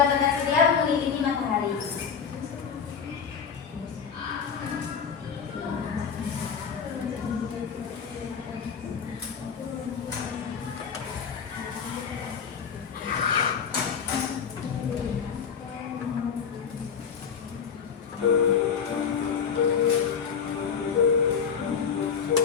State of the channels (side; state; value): right; quieter; 6.8 dB